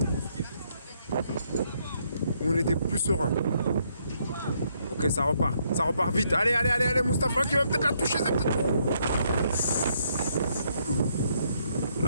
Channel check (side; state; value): both; inverted; correlation -0.72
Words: où on était plus serein. Ok, ça repart vite. Allez, Mustafa qui va peut-être la toucher.